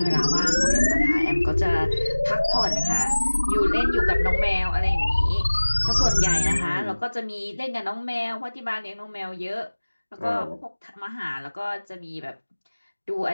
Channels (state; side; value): inverted; both; correlation -1.00